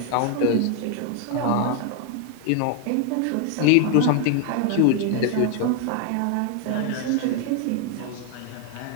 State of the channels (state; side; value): different; both; correlation 0.00